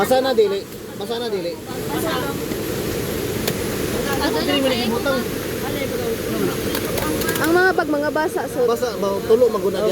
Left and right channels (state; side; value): identical; both; correlation 1.00